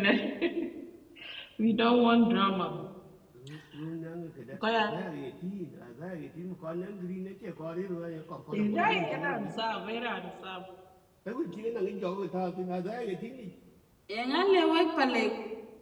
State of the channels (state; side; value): identical; both; correlation 1.00